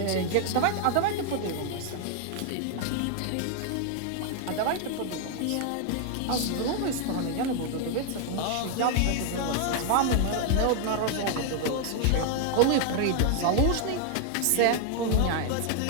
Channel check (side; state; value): both; different; correlation 0.00